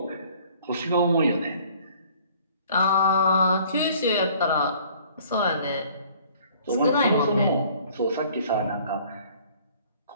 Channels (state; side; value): inverted; both; correlation -0.55